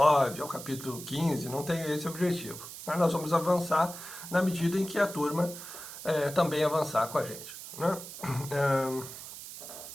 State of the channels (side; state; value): right; noise; hiss, 12 dB below the sound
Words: ao capítulo 15, não tem esse objetivo. Mas nós vamos avançar na medida em que a turma também avançar com a gente, né?